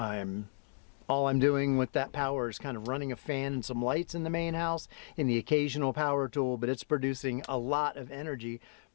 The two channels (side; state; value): right; silent; digital silence